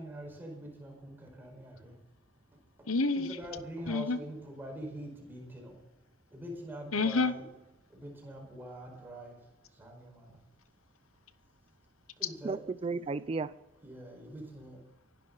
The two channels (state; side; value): normal; both; correlation 0.38